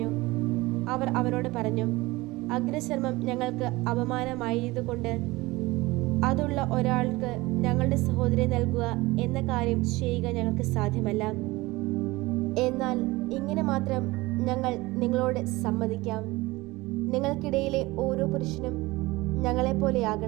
അവർ അവനോട് പറഞ്ഞു: അഗ്രചർമ്മം ഞങ്ങൾക്ക് അപമാനമായതുകൊണ്ട് അതുള്ള ഒരാൾക്ക് ഞങ്ങളുടെ സഹോദരി നൽകുക എന്ന കാര്യം ചെയ്യുക ഞങ്ങൾക്ക് സാധ്യമല്ല. എന്നാൽ ഇങ്ങനെ മാത്രം ഞങ്ങൾ നിങ്ങളോട് സമ്മതിക്കാം: നിങ്ങൾക്കിടയിലെ ഓരോ പുരുഷനും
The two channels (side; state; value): left; quieter; 20.9 dB